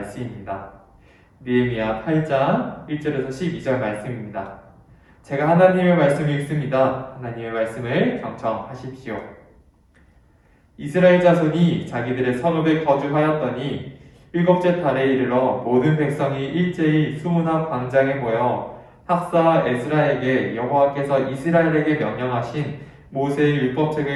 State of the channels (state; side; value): identical; both; correlation 1.00